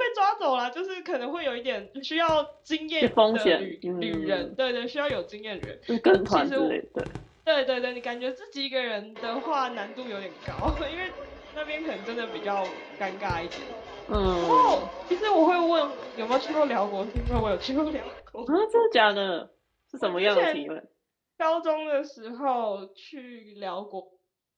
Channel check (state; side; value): identical; both; correlation 1.00